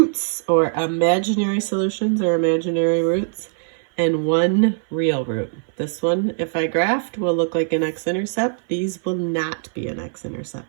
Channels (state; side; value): silent; left; 59 dB below the other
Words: or imaginary solutions or imaginary roots, and 1 real root. This one, if I graphed, will look like an x-intercept. These will not be an